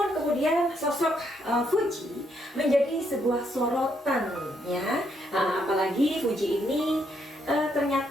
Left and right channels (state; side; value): normal; both; correlation 0.75